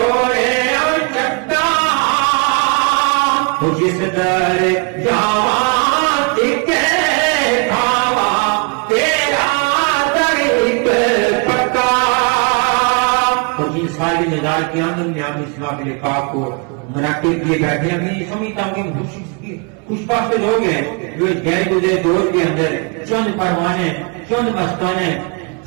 اور چکا جس در جاواں ٹکے کھاوا تیرا طریق پکا جن ساری نظار کی آمد میں ہم اس معاملے پاک کو منعقد کیے بیٹھے ہیں. میں سمجھتا ہوں کہ خوش بخت لوگ ہیں جو اس گہرے گزرے دور کے اندر چند پروانے چند مستانے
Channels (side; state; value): left; quieter; 33.1 dB